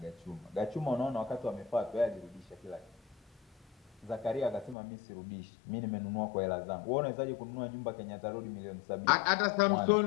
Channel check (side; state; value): right; drops out; at 4.8 s